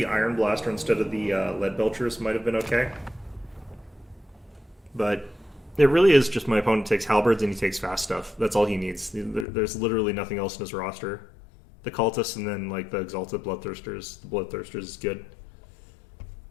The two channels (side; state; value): right; drops out; at 9.5 s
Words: Iron Blaster instead of the Lead Belchers might have been okay. But It really is just my opponent takes halberds and he takes fast stuff. That's all he needs. There's literally nothing else in his roster. The cultists and then like the exalted bloodthirsters. The bloodthirsters is good.